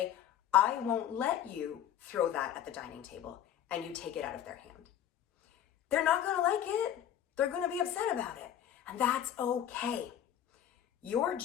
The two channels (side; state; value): right; quieter; 10.4 dB